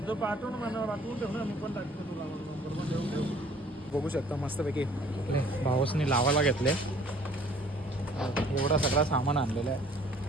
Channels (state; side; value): normal; both; correlation 0.55